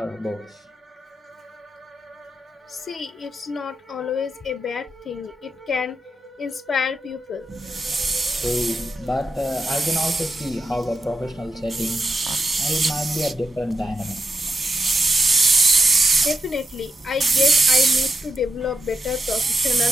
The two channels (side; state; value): both; normal; correlation 0.86